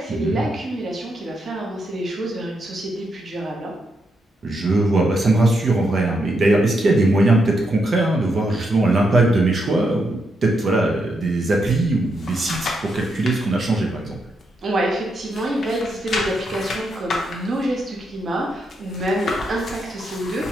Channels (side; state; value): both; normal; correlation 0.81